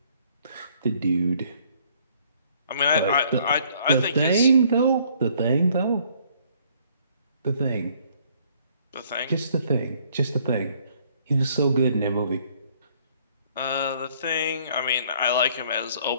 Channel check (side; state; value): both; inverted; correlation -0.62